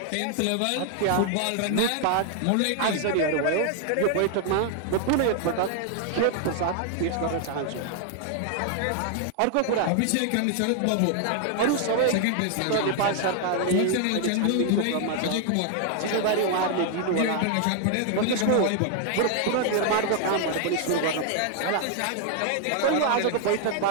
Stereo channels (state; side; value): different; both; correlation 0.00